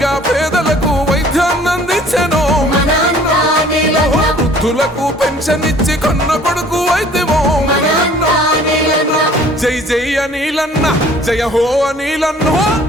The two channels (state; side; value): normal; both; correlation 0.53